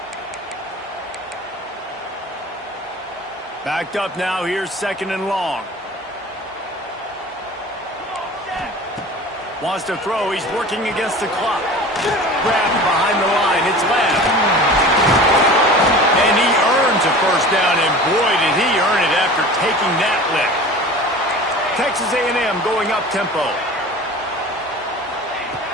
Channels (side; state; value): both; normal; correlation 0.39